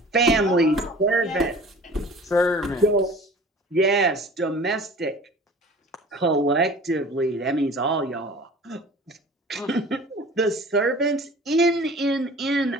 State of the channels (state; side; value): normal; both; correlation 0.44